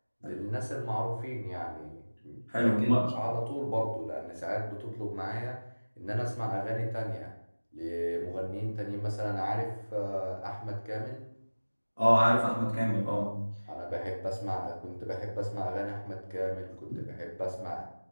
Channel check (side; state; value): both; inverted; correlation -1.00